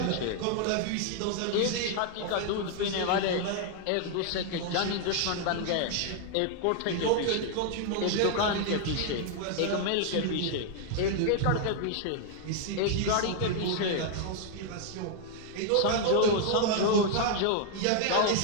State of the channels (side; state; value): both; different; correlation 0.00